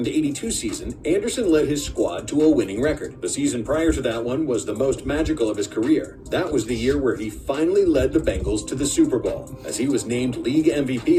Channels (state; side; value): identical; both; correlation 1.00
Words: 82 season, Anderson led his squad to a winning record. The season prior to that one was the most magical of his career. That was the year where he finally led the Bengals to the Super Bowl, as he was named league MVP